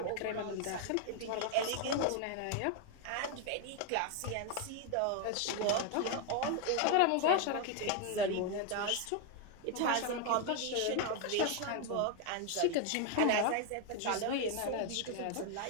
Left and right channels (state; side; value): different; both; correlation 0.01